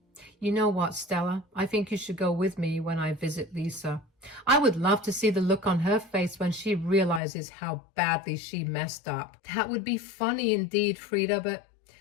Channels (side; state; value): right; drops out; at 7.2 s